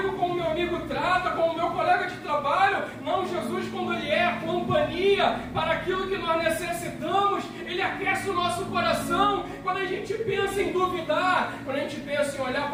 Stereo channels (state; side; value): identical; both; correlation 1.00